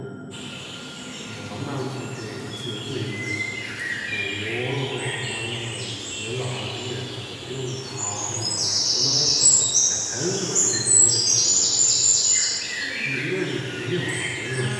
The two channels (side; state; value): both; identical; correlation 1.00